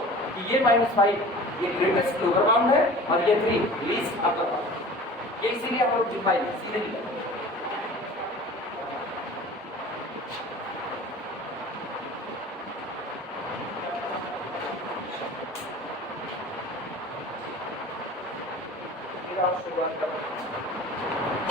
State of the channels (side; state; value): both; normal; correlation 0.42